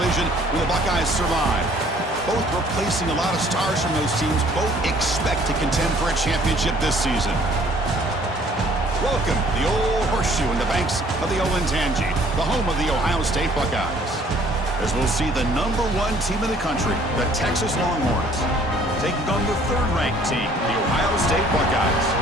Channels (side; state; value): both; normal; correlation 0.58